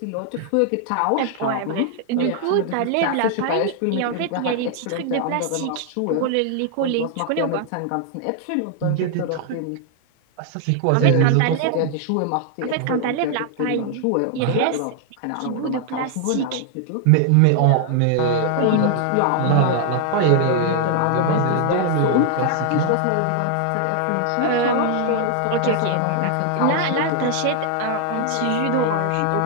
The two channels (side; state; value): both; different; correlation 0.00